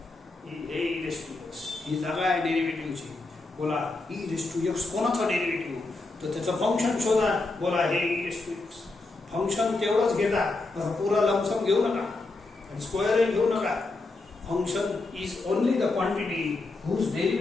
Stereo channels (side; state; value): right; quieter; 3.3 dB